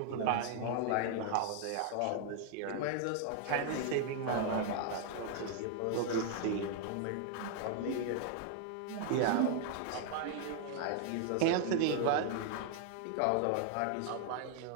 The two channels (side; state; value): both; different; correlation 0.00